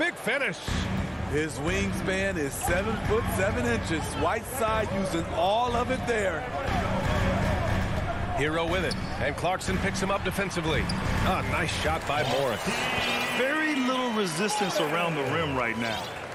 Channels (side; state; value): both; identical; correlation 1.00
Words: finish. His wingspan is 7'7". Whiteside using all of it there. Hero with it, and Clarkson picks him up defensively. Ah, nice shot by Morris. Very little resistance around the rim right now.